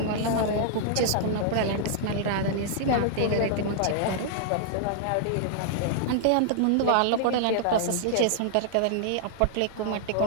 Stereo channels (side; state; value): both; different; correlation -0.01